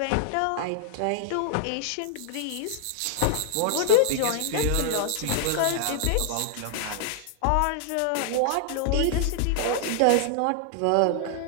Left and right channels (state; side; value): different; both; correlation 0.00